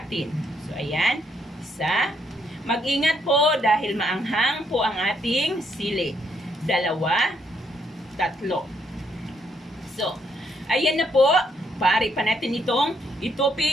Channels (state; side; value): normal; both; correlation 0.73